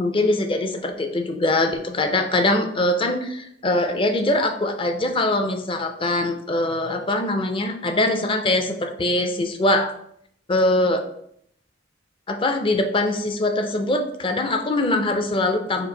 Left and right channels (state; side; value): normal; both; correlation 0.30